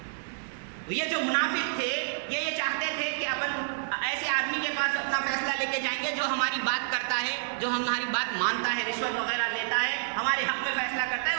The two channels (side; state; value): left; silent; digital silence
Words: یہ جو منافق تھے یہ چاہتے تھے کہ ایسے آدمی کے پاس اپنا فیصلہ لے کے جائیں گے جو ہماری بات کرتا ہے، جو ہماری بات مانتا ہے، رشوت وغیرہ لیتا ہے، ہمارے حق میں فیصلہ کرتا ہے،